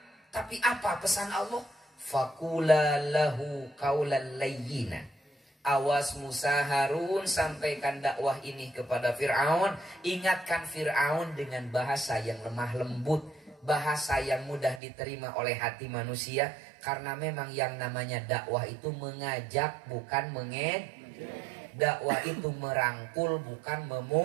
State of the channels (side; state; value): left; drops out; at 14.8 s